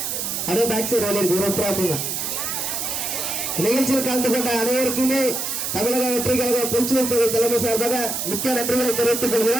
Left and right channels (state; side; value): noise; right; hiss, 2 dB below the sound